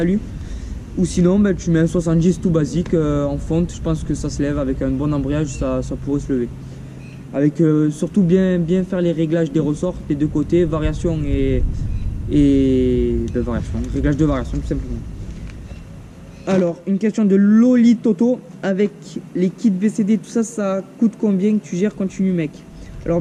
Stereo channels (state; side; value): identical; both; correlation 1.00